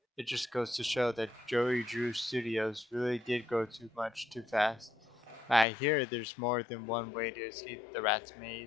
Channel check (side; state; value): right; drops out; at 5.7 s